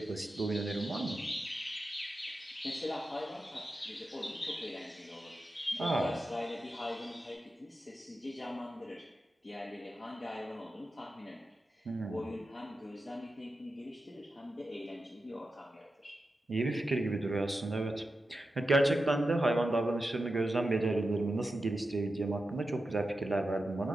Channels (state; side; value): normal; both; correlation 0.91